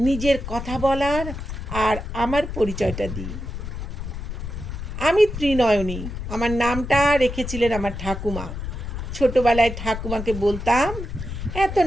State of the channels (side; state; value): left; noise; rumble, 7 dB below the sound